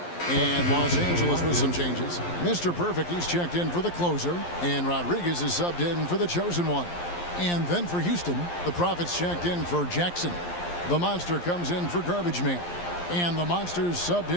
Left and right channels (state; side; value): late; right; 11 ms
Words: And Los Angeles with some changes. Mr. Perfect, he's checked in for the closer, and Rodriguez is subbed in for the chosen one. And then for Houston, the Prophets checked in for Jackson. The Monster comes in for Garbage Man, and the Monster's subbed